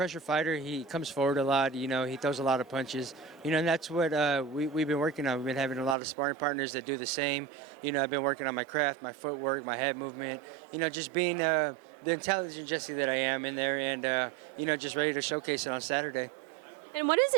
fighter. He comes forward a lot. He throws a lot of punches. And that's what we've been working on. We've been having a lot of sparring partners that do the same. I've been working on my craft, my footwork, my head movement. Just being the intelligent Jessie that I am in there, and just ready to showcase it on Saturday. And what does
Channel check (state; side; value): drops out; left; at 6.0 s